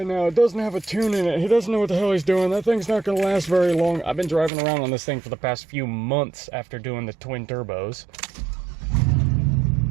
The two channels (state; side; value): drops out; left; at 4.5 s